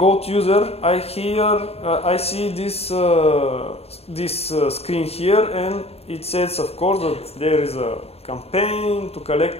user, I see this screen here, and it says, of course, that there is a campaign to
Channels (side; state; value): right; late; 0.29 ms